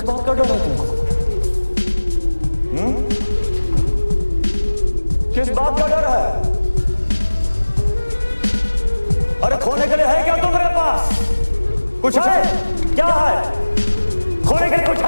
बात का डर है तुमको? किस बात का डर है? अरे खोने के लिए है क्या तुम्हारे पास? कुछ है? क्या है? खोने के लिए कुछ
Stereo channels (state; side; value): inverted; both; correlation -1.00